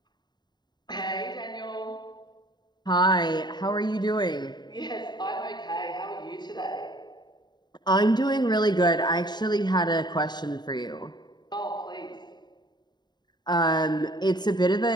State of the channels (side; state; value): right; late; 0.21 ms